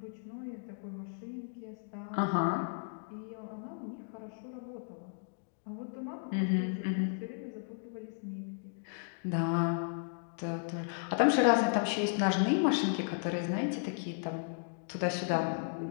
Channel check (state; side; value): silent; right; digital silence